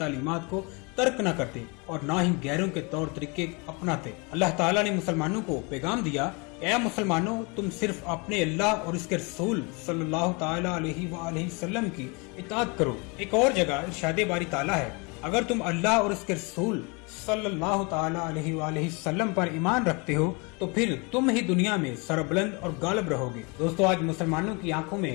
کو ترک نہ کرتے اور نہ ہی غیروں کے طور طریقے اپناتے۔ اللہ تعالیٰ نے مسلمانوں کو پیغام دیا، اے مسلمانوں، تم صرف اپنے اللہ اور اس کے رسول صلی اللہ تعالی علیہ وآلہ وسلم کی اطاعت کرو۔ ایک اور جگہ ارشاد باری تعالیٰ ہے، اگر تم اللہ اور اس کے رسول صلی اللہ تعالی علیہ وآلہ وسلم پر ایمان رکھتے ہو تو پھر تم ہی دنیا میں سربلند اور غالب رہو گے۔ دوستو، آج مسلمانوں کی آنکھوں میں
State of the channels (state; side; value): quieter; right; 30.1 dB